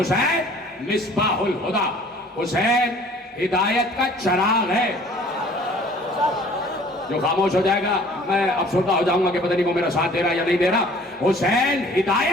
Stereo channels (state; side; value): normal; both; correlation 0.52